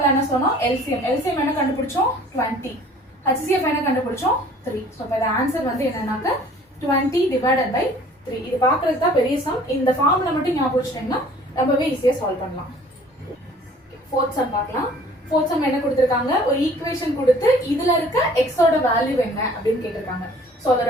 என்ன சொன்னோம், எல்சிஎம். எல்சிஎம் என்ன கண்டுபிடிச்சோம், 20. HCF என்ன கண்டுபிடிச்சோம், 3. ஸோ இப்போ ஆன்சர் வந்து என்னன்னாக்க 20 டிவைடட் பை 3. இது பார்க்கறதுக்கு தான் பெரிய சம். இந்த ஃபார்முலா மட்டும் ஞாபகம் வச்சுட்டீங்கன்னா ரொம்பவே ஈஸியா சால்வ் பண்ணலாம். ஃபோர்த் சம் பார்க்கலாம். ஃபோர்த் சம் என்ன கொடுத்திருக்காங்க, ஒரு ஈக்குவேஷன் கொடுத்து இதுல இருக்க எக்ஸோட வேல்யூ என்ன அப்படின்னு கேட்டிருக்காங்க. ஸோ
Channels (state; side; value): normal; both; correlation 0.52